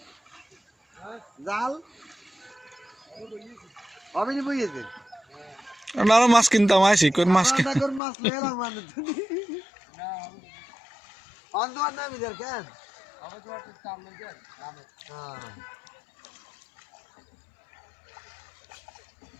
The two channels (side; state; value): right; drops out; at 8.0 s